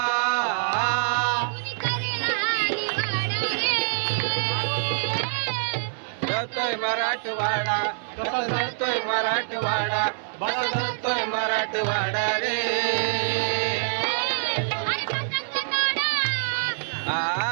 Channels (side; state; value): left; silent; 61 dB below the other